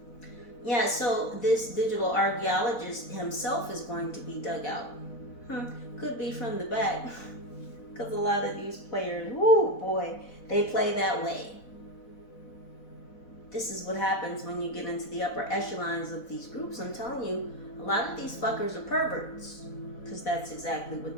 Yeah, so this digital archaeologist himself is going to be dug out. Could be from the back. Because a lot of these players, whoo boy, they play that way. This is what happens when you get into the upper echelons of these groups. I'm telling you, a lot of these fuckers are perverts. Because that's exactly what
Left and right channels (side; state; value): right; late; 4.0 ms